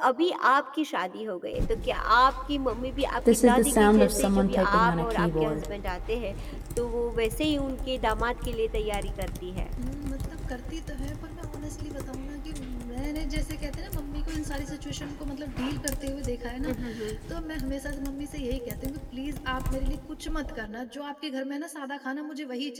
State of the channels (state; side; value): identical; both; correlation 1.00